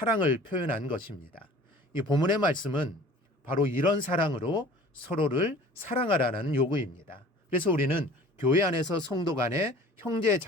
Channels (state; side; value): normal; both; correlation 0.46